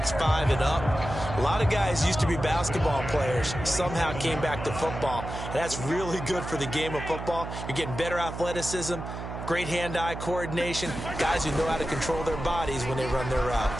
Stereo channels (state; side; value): noise; right; hum, 8 dB below the sound